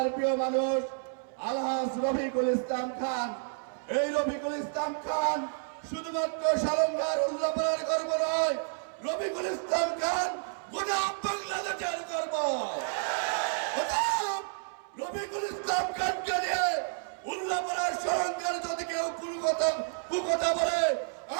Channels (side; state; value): left; silent; 57 dB below the other